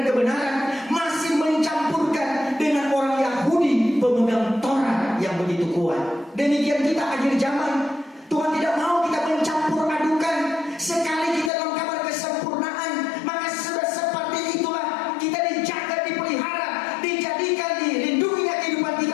kebenaran, masih mencampurkan dengan orang Yahudi pemegang Taurat yang begitu kuat. Demikian kita akhir zaman. Tuhan tidak mau kita mencampur adukan. Sekali kita dalam kabar kesempurnaan, maka sudah seperti itulah kita dijaga, dipelihara, dijadikan, dilindungi kehidupan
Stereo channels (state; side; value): drops out; right; at 11.5 s